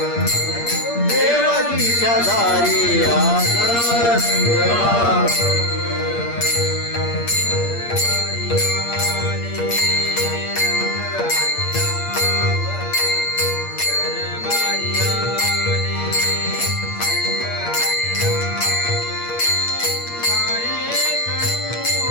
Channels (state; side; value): late; right; 8.6 ms